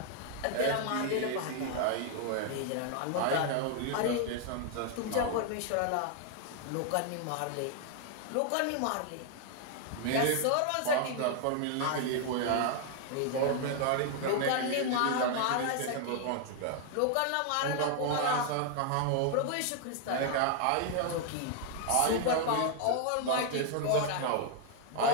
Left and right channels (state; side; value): different; both; correlation 0.00